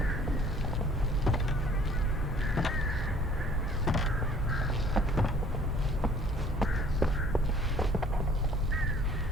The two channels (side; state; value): both; normal; correlation 0.54